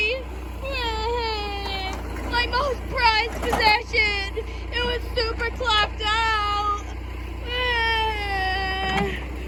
My most prized possession! It was super clapped out!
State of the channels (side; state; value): both; identical; correlation 1.00